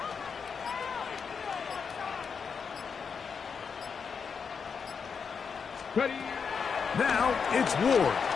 Ready? Now it's Ward.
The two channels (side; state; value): right; quieter; 6.0 dB